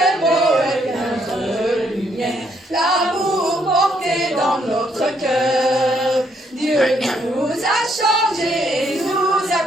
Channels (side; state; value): both; normal; correlation 0.71